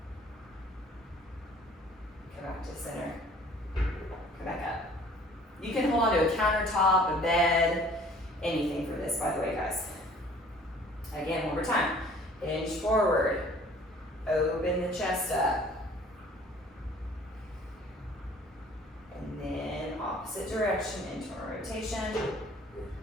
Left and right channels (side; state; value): both; normal; correlation 0.53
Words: Come back to center, come back up. You can hold on to a countertop, a bed, anything for this, by the way, guys. Again, 1 more time. Hinge forward, open the chest up. And then opposite direction, internal rotation.